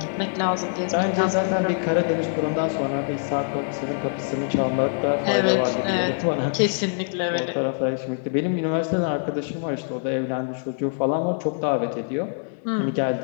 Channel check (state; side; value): silent; right; digital silence